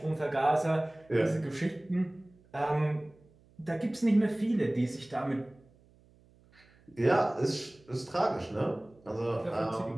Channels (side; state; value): right; noise; hum, 29 dB below the sound